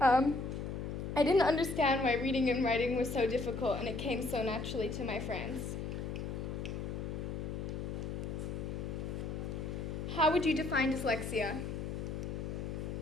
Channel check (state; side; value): noise; left; hum, 4 dB below the sound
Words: I didn't understand why reading and writing was so difficult, and it came so naturally to my friends. How would you define dyslexia?